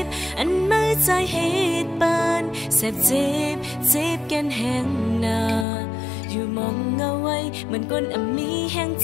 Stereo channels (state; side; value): drops out; right; at 5.7 s